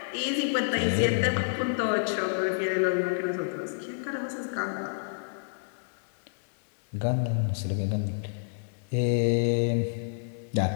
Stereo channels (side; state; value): right; silent; digital silence